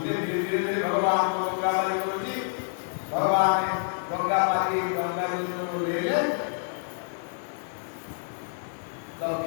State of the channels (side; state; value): right; silent; digital silence